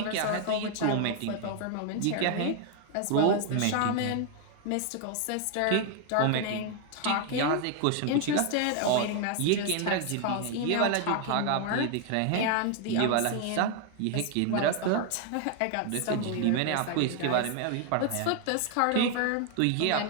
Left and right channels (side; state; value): both; different; correlation 0.01